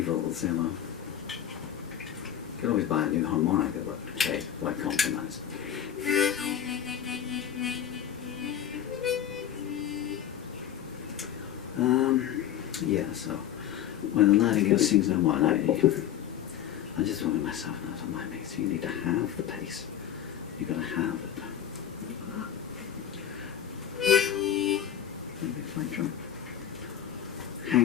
you know. You can always buy a new harmonica, but hey, why compromise? Yeah, so when the Nightingale Sings No More, I just wanted myself now to mind me, so you need to have the pace. You've got to have it. Maybe a flight drum.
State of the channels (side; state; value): right; quieter; 10.1 dB